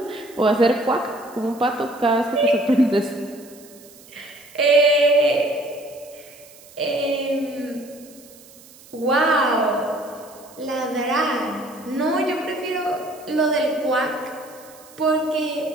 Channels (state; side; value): noise; right; hiss, 23 dB below the sound